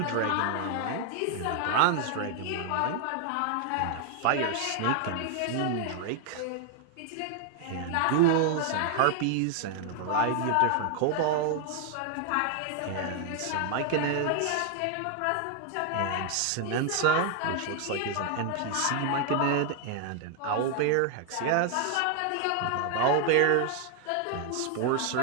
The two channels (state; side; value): different; both; correlation 0.00